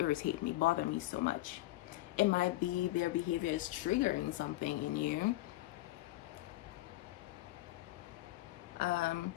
me, bother me so much? It might be their behavior is triggering something in you.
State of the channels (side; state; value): right; quieter; 17.2 dB